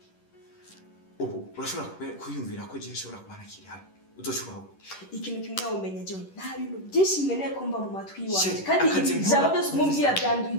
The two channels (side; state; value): right; late; 11 ms